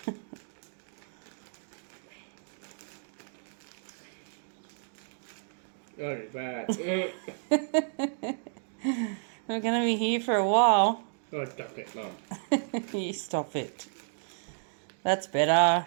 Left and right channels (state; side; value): silent; left; digital silence